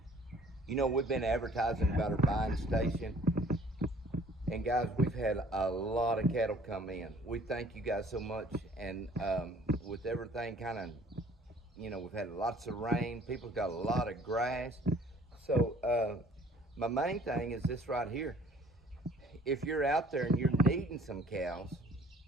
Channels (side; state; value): both; normal; correlation 0.55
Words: You know, we've been advertising about our buying station, and guys, we've had a lot of cattle come in. We thank you guys so much, and with everything kind of, we've had lots of rain, people's got a lot of grass. So, my main thing is this right here. If you're out there and you're needing some cows,